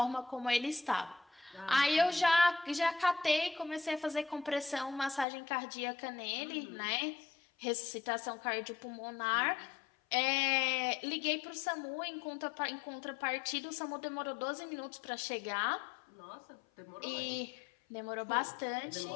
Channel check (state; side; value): drops out; right; at 5.2 s